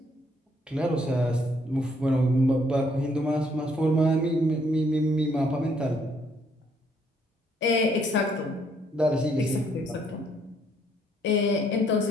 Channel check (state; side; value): normal; both; correlation 0.68